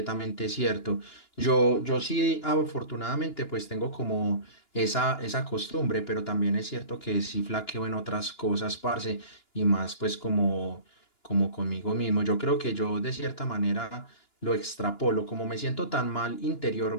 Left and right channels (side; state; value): right; late; 2.9 ms